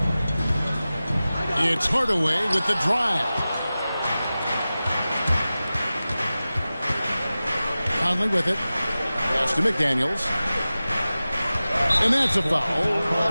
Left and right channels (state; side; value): inverted; both; correlation -0.96